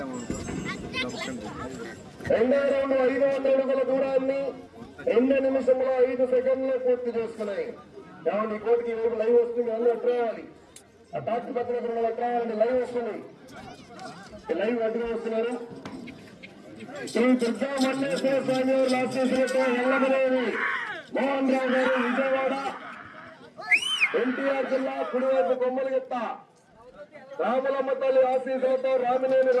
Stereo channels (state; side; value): identical; both; correlation 1.00